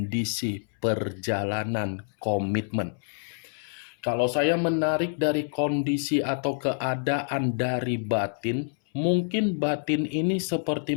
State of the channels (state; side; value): silent; right; 60 dB below the other